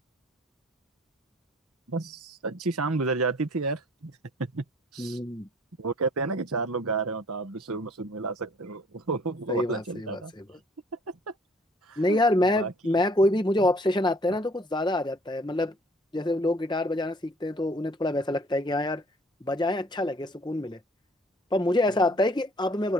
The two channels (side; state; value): both; normal; correlation 0.56